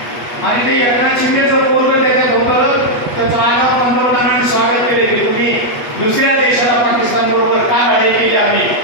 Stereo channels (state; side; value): late; right; 8.2 ms